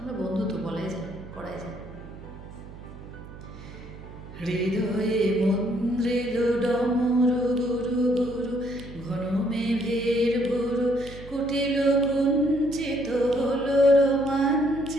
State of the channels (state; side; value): noise; right; hum, 15 dB below the sound